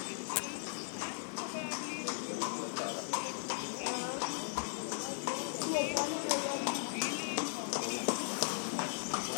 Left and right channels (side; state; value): right; silent; digital silence